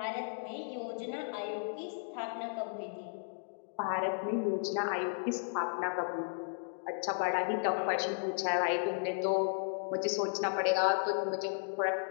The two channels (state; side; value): silent; right; digital silence